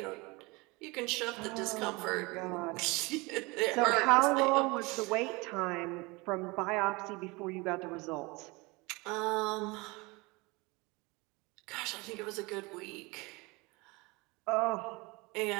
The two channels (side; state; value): left; quieter; 25.2 dB